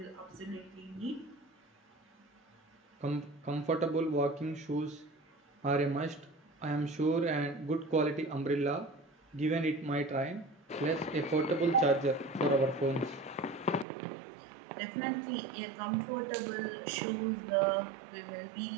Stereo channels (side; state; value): left; drops out; at 13.9 s